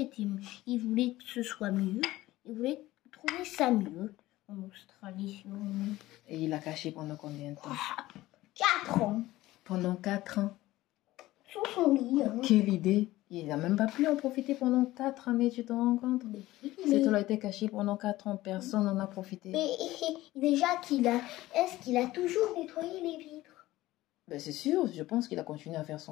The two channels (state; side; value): quieter; right; 16.9 dB